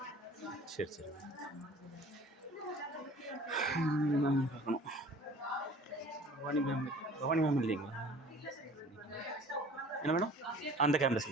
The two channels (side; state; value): both; normal; correlation 0.47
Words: சரி சரி பார்க்கணும். பவானி மேம் இல்லைங்களா? என்ன மேடம்? அந்த கேம்பஸ்